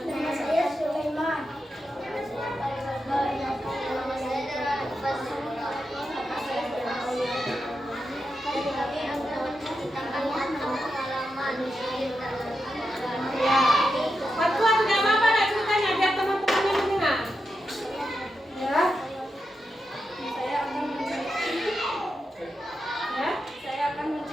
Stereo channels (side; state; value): both; normal; correlation 0.87